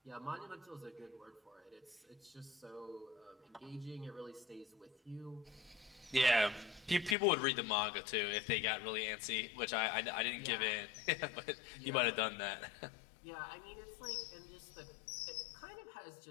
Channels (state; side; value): drops out; right; at 7.2 s